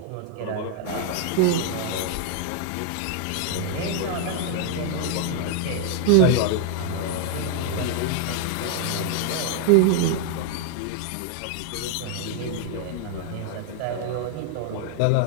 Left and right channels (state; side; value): different; both; correlation 0.00